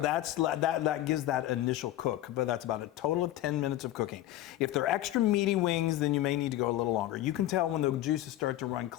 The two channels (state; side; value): quieter; right; 14.3 dB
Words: that gives that initial cook, but that's about a total of 10 minutes of cooking. If they're extra meaty wings, then you may need to go a little longer. You can tell when the juices start to run